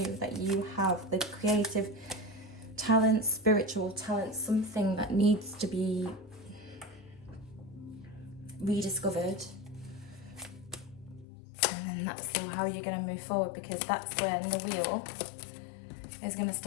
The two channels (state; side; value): drops out; right; at 11.2 s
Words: that you have the creative talent, spiritual talent, something that needs to be rediscovered. And then that's how you're going to move forward, because that's when the wheel is going to